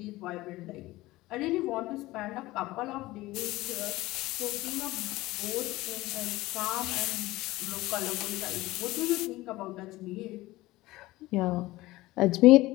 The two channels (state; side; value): quieter; right; 18.6 dB